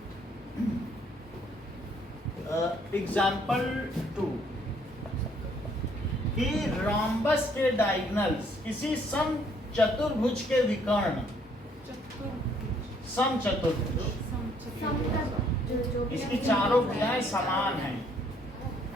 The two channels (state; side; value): normal; both; correlation 0.65